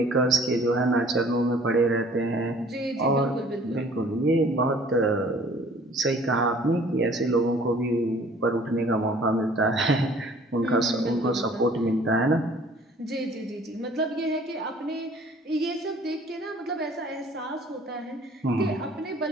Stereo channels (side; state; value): both; normal; correlation 0.53